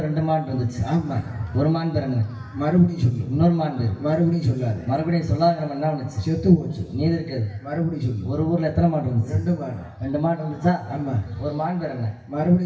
2 மான் இருந்துச்சு. ஆமா. ஒரு மான் பேர் என்ன? மறுபடியும் சொல்லு. இன்னொரு மான் பேர் மறுபடியும் சொல்லாத. மறுபடியும் சொல்லாங்கிற மான் என்ன பண்ணுச்சு? செத்து போச்சு. மீதி இருக்காது. மறுபடியும் சொல்லு. ஒரு ஊர்ல எத்தனை மான் இருந்துச்சு? 2 மாடு. 2 மான் இருந்துச்சா? ஆமா. ஒரு மான் பேர் என்ன?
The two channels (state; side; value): identical; both; correlation 1.00